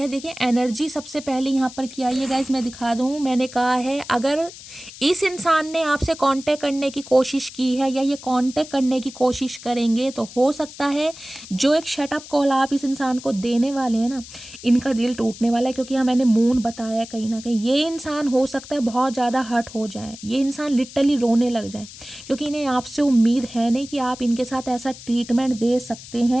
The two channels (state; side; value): noise; left; hiss, 16 dB below the sound